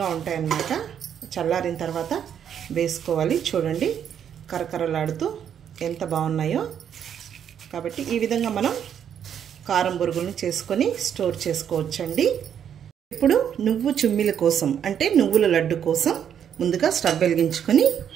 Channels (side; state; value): left; quieter; 8.8 dB